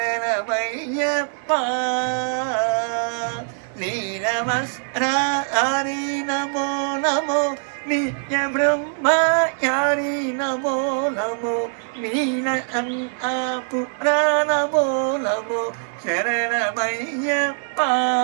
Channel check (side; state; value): left; silent; digital silence